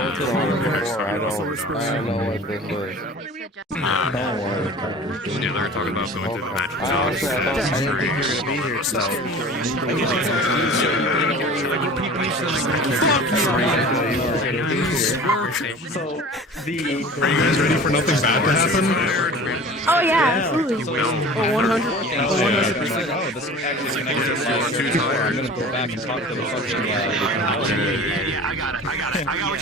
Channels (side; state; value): both; normal; correlation 0.40